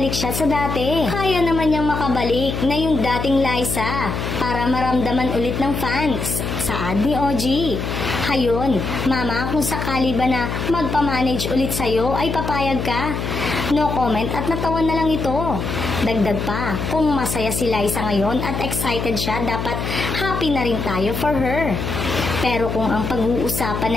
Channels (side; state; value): left; noise; hum, 4 dB below the sound